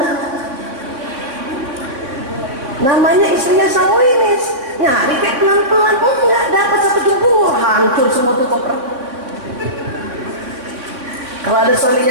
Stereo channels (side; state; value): left; late; 3.6 ms